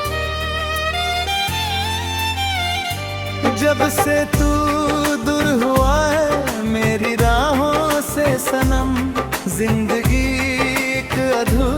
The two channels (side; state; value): both; identical; correlation 1.00